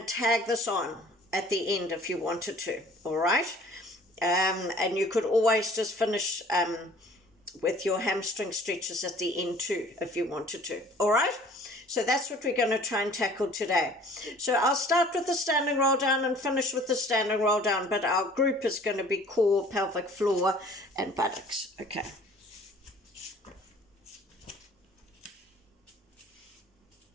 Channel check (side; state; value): both; normal; correlation 0.51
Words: tag this on at the end if you wanted to, all right? And you could always just finish with your hamstring stretches at the end too, if you wanted to, all right? So that's what we're going to try and tackle today. So I'll start with the standing roll down and finish with the standing roll down, but our group is going to be core, pelvic floor, and buttocks. Okay.